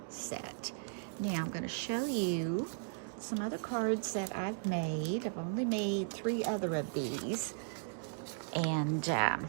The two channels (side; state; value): left; silent; digital silence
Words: set. Now I'm going to show you some other cards that I've made. I've only made 3 other of these, and